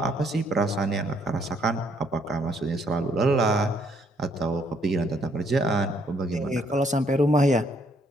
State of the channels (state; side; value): normal; both; correlation 0.68